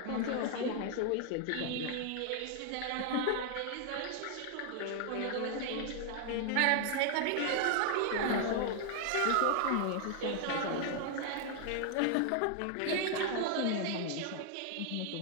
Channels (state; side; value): different; both; correlation 0.00